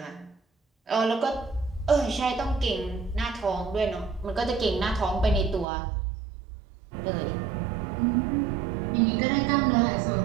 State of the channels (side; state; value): left; drops out; at 5.7 s